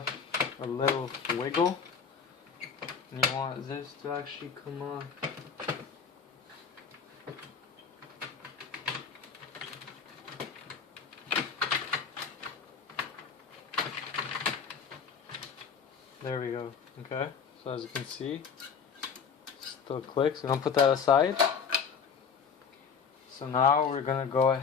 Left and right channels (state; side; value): quieter; right; 6.3 dB